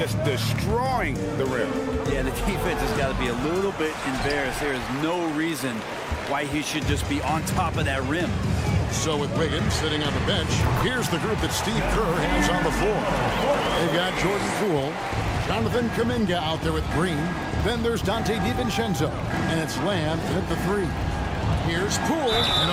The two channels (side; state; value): both; identical; correlation 1.00